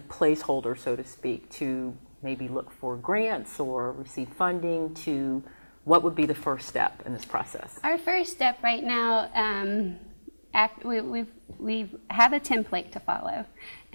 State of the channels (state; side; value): inverted; both; correlation -1.00